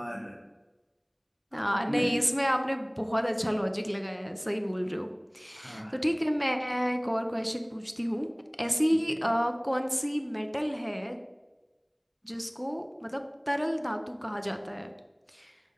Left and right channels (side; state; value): both; identical; correlation 1.00